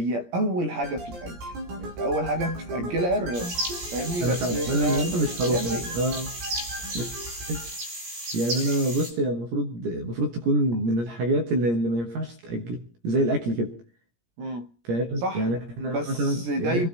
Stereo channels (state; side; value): late; left; 17 ms